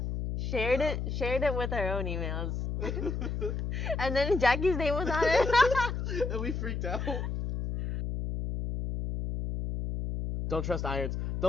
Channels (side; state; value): left; noise; hum, 3 dB below the sound